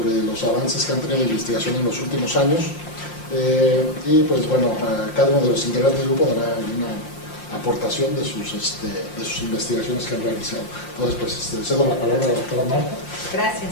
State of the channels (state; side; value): late; right; 5.7 ms